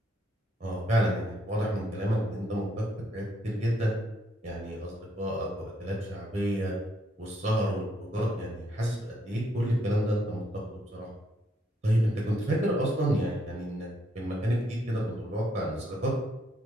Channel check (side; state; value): both; normal; correlation 0.73